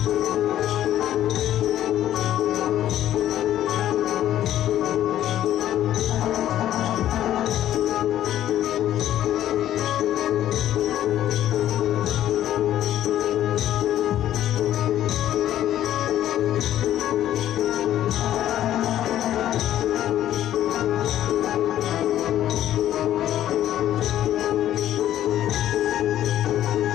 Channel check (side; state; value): right; quieter; 12.2 dB